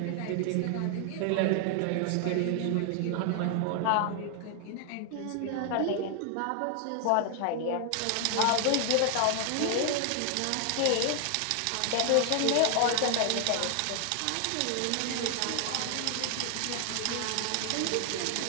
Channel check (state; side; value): different; both; correlation 0.00